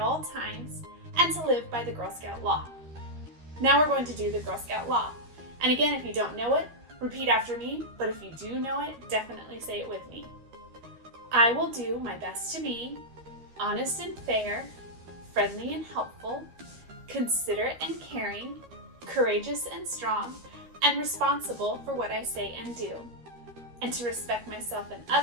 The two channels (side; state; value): left; late; 13 ms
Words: times, and to live by the Girl Scout Law. Now we're going to do the Girl Scout Law. And again, if you don't know it, repeat after me, but if you do know it, definitely say it with me. I will do my best to be honest and fair, friendly and helpful, considerate and caring, courageous and strong, and responsible for what I say and do. And to respect myself and